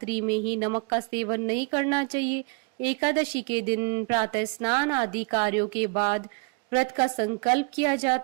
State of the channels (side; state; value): left; quieter; 32.9 dB